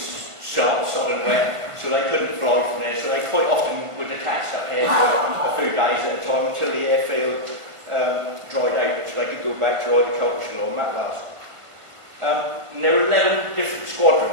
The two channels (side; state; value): left; late; 1.4 ms